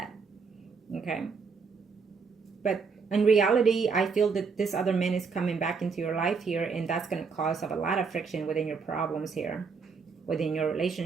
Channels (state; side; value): quieter; left; 5.2 dB